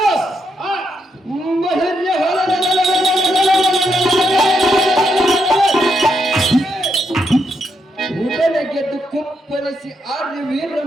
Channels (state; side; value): normal; both; correlation 0.79